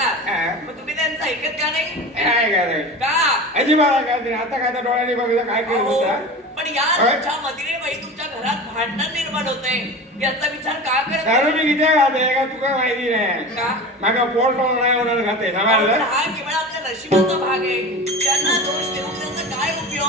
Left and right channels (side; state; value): both; normal; correlation 0.31